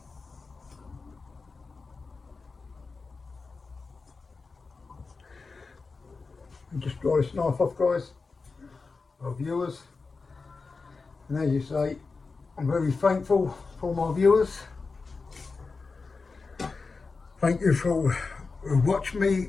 And just dry this knife off, guys, our viewers. And as you say, I'm very thankful for my viewers. Thank you for watching me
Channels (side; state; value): right; quieter; 4.3 dB